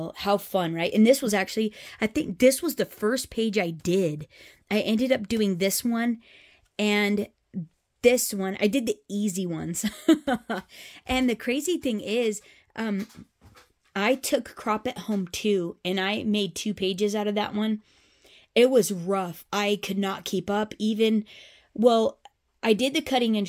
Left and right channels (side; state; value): both; identical; correlation 1.00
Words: how fun, right? And this was actually, I think this was the first page I did. I ended up doing this one and this one. I did the easy ones. And the crazy thing is, I took Crop at Home 2, and I made 2 pages out of that one. It was rough. I could not keep up. Even, well, I did the cutting